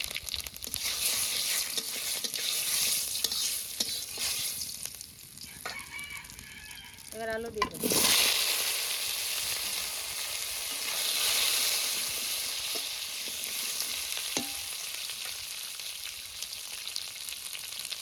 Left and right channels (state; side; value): identical; both; correlation 1.00